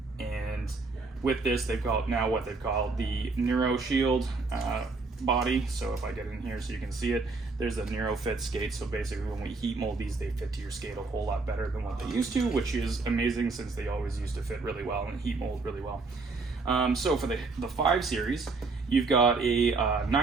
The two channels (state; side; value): quieter; left; 3.9 dB